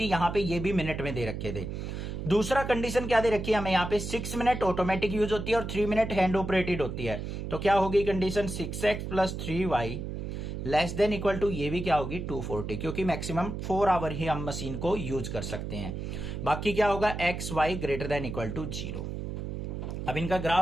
यहां पे ये भी मिनट में दे रखे थे। दूसरा कंडीशन क्या दे रखी है हमें यहाँ पे, 6 मिनट ऑटोमेटिक यूज होती है और 3 मिनट हैंड ऑपरेटेड होती है। तो क्या होगी condition, 6x plus 3y less than equal to, ये भी क्या होगी 240, क्योंकि मैक्सिमम 4 आवर ही हम मशीन को यूज कर सकते हैं। बाकी क्या होगा, x Y greater than equal to 0। अब इनका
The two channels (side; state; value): right; noise; hum, 5 dB below the sound